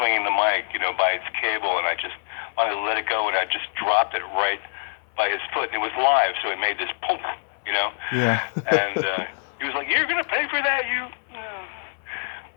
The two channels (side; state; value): right; silent; 62 dB below the other